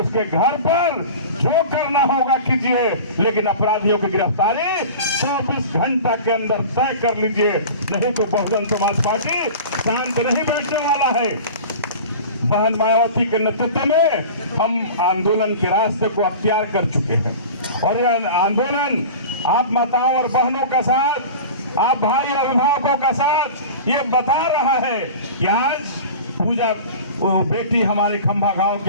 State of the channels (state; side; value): inverted; both; correlation -0.36